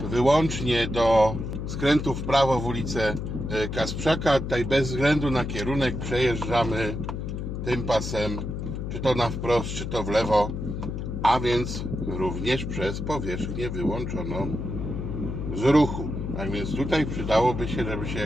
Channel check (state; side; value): noise; left; hum, 5 dB below the sound